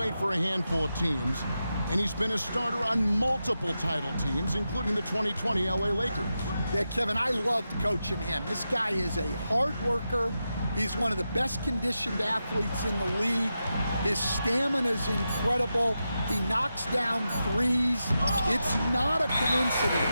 for a handful of teams, and he's been a starter on multiple title teams, including the 2020 LA Lakers. Yeah, Kevin, I loved coaching him. This guy is a hard worker. He's one of the best conditioned athletes in the league. His stamina is incredible. He knocks down threes. It's not a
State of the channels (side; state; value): both; inverted; correlation -0.89